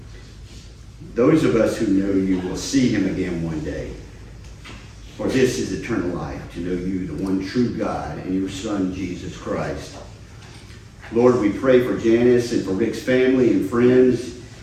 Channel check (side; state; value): both; identical; correlation 1.00